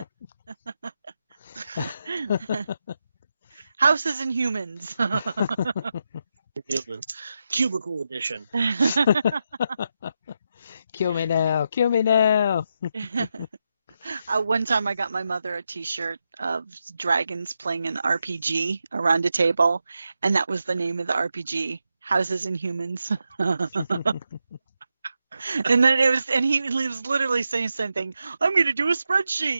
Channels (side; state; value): both; inverted; correlation -0.86